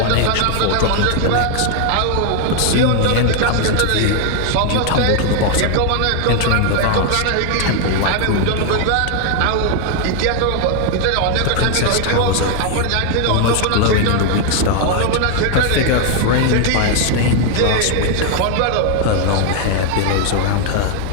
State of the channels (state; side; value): different; both; correlation 0.00